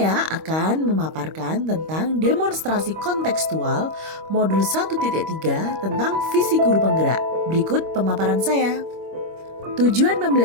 akan memaparkan tentang demonstrasi kontekstual modul 1.3 tentang visi guru penggerak. Berikut pemaparan saya. Tujuan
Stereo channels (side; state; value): left; late; 25 ms